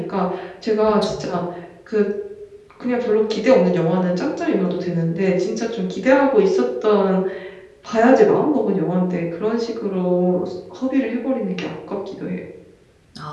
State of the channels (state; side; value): identical; both; correlation 1.00